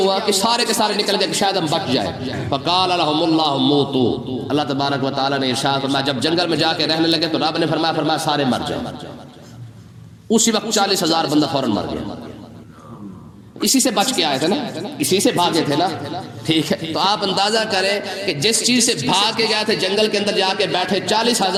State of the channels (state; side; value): identical; both; correlation 1.00